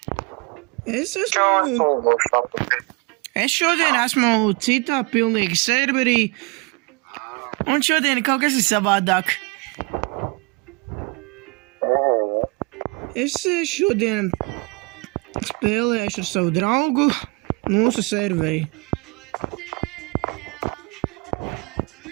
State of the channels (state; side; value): quieter; left; 28.0 dB